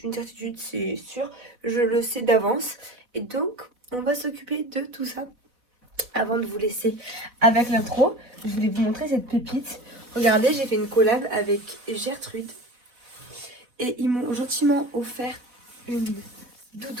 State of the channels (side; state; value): left; late; 4.1 ms